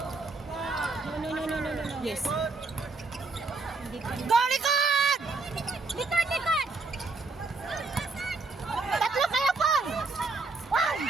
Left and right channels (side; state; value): left; quieter; 3.8 dB